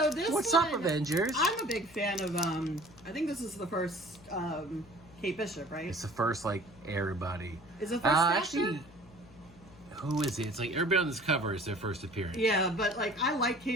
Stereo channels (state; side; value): noise; left; hum, 22 dB below the sound